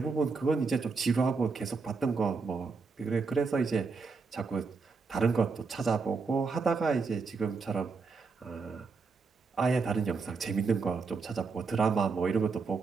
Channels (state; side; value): quieter; left; 4.6 dB